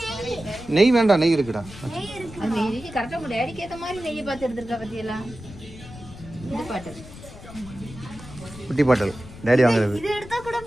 நெய் வேண்டாம், நெய் இருக்குடா. குட்டி பாட்டல் டேடி வாங்குறது.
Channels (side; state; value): left; noise; rumble, 16 dB below the sound